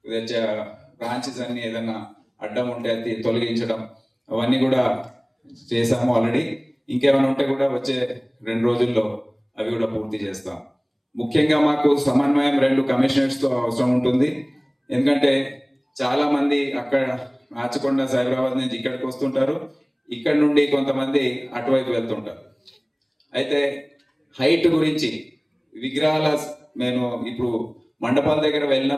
బ్రాంచెస్ అన్ని ఏదైనా అడ్డం ఉంటే అది తొలగించడం, అవన్నీ కూడా చేసాము ఆల్రెడీ. ఇంకేమైనా ఉంటే కూడా వచ్చే 2 రోజుల్లో అవి కూడా పూర్తి చేస్తాం. ముఖ్యంగా మాకు సమన్వయం 2 కమిషనర్స్తో అవసరం ఉంటుంది. ఎందుకంటే చాలా మంది అక్కడ రాచకొండ, సైబరాబాద్ నుంచి ఇక్కడికి వస్తుంటారు, ఇక్కడ నుండి కొంతమంది అటువైపు వెళ్తుంటారు. అయితే హైట్ గురించి విగ్రహాల నేను ఇప్పుడు మండపాల దగ్గర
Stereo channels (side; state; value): both; identical; correlation 1.00